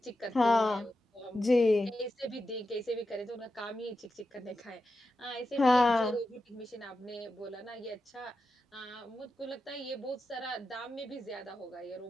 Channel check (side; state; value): both; normal; correlation 0.89